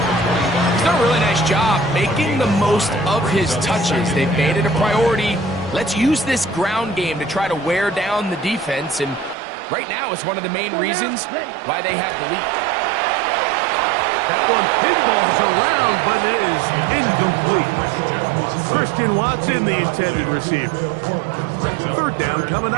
He's done a really nice job making the most of his touches. They've made it a priority. Let's use this ground game to try to wear down the defense. And right now, it's one of the main reasons why they have the lead. That one pinballs around, but it is incomplete. Christian Watson, the intended receiver. Third down coming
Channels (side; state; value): left; drops out; at 9.3 s